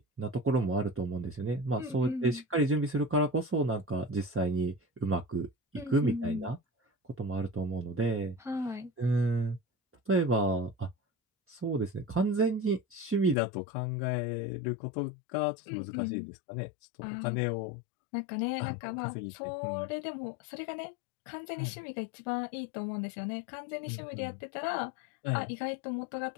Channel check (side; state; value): right; drops out; at 13.4 s